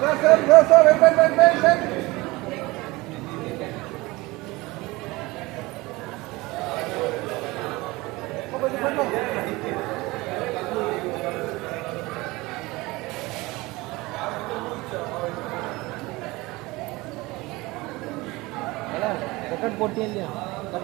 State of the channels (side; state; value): left; quieter; 21.7 dB